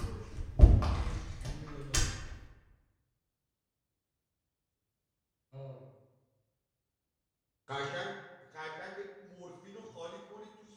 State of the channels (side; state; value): both; identical; correlation 1.00